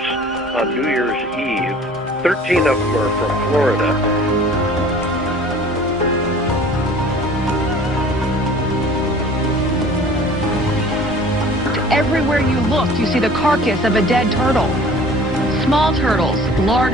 on New Year's Eve. 13 of them are from Florida. Everywhere you look, you see the carcass of a dead turtle. Small turtles,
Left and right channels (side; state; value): both; normal; correlation 0.47